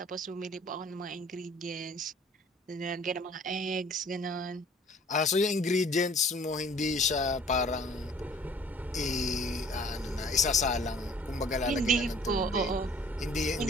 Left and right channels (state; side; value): normal; both; correlation 0.53